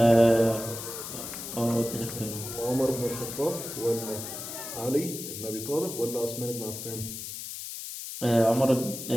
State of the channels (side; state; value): left; noise; hiss, 8 dB below the sound